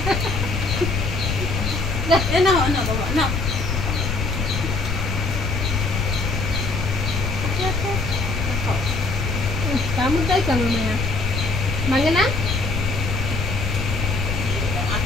না বাবা না কামড়টাই কেন না ভাঙে না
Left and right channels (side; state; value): left; noise; rumble, 1 dB below the sound